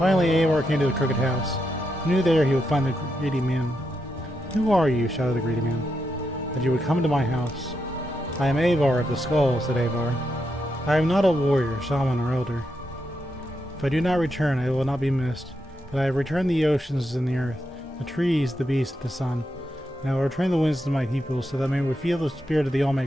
Avar came to the crooked house. He knew there he would find the greedy man. "Who are you?" shouted the greedy man, "that you would come to my house?" "I am Avar of the Skull," said Avar. "I am not a warrior, shaman, or elder. If I do not return, I will not be missed. But I have returned the oceans and the earth, the trees, the beasts, the sun. And I will return the winds to my people, so that they may feel the spirit of the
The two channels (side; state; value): both; normal; correlation 0.83